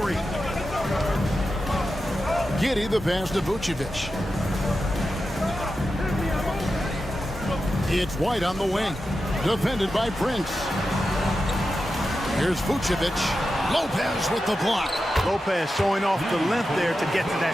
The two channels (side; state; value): both; normal; correlation 0.90